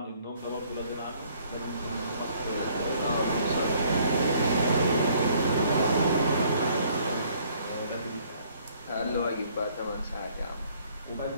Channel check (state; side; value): inverted; both; correlation -0.62